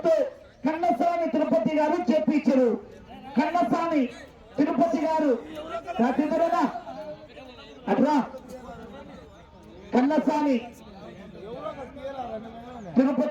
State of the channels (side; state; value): both; identical; correlation 1.00